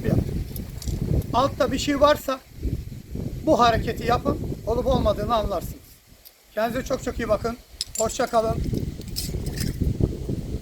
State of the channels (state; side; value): identical; both; correlation 1.00